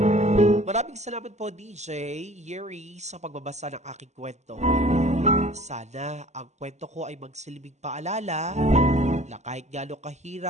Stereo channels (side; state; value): left; late; 0.33 ms